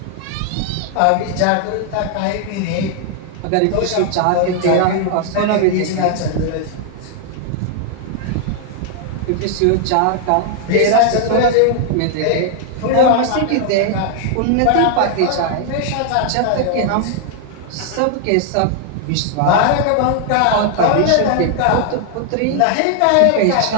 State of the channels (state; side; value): different; both; correlation 0.00